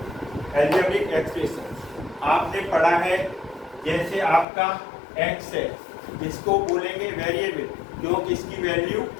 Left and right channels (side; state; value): right; drops out; at 4.5 s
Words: अलजेब्रिक एक्सप्रेशन आपने पढ़ा है। जैसे आपका एक्स है, इसको बोलेंगे वेरिएबल, क्योंकि इसकी वैल्यू